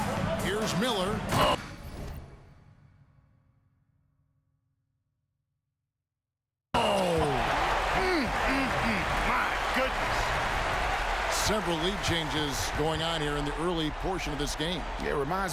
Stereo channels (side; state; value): both; identical; correlation 1.00